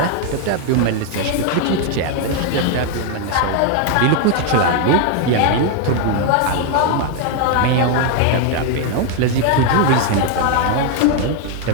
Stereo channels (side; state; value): both; different; correlation 0.01